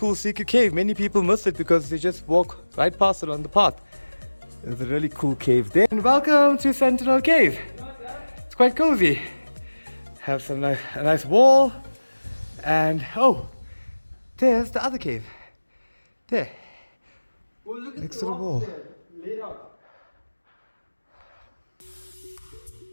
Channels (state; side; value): inverted; both; correlation -1.00